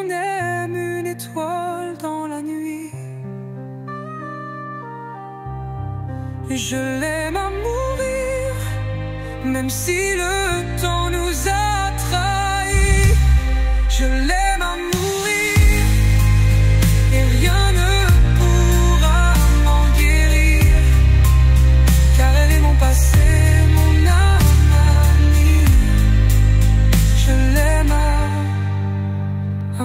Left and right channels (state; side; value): identical; both; correlation 1.00